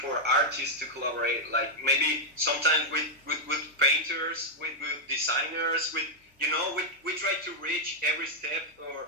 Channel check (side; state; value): both; normal; correlation -0.02